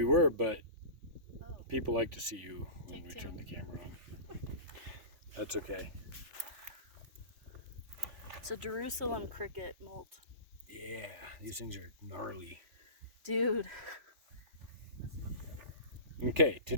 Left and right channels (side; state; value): left; late; 3.5 ms